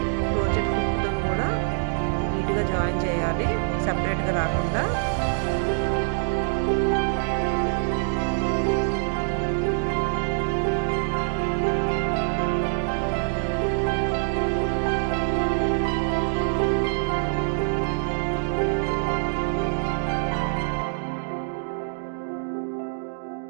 క్రోచెట్ హుక్తో కూడా నీట్గా జాయిన్ చేయాలి, సపరేట్గా రాకుండా.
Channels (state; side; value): silent; left; digital silence